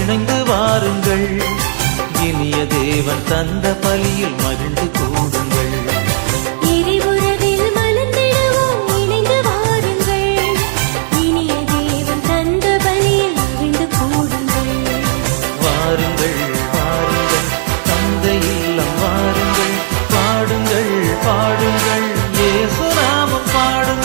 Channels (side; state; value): left; silent; digital silence